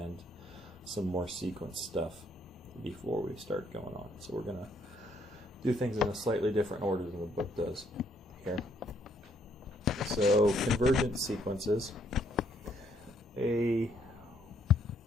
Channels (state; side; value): normal; both; correlation 0.69